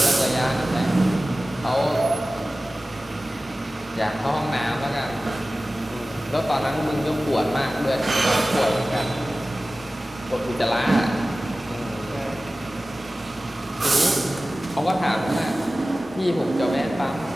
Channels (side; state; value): both; normal; correlation 0.97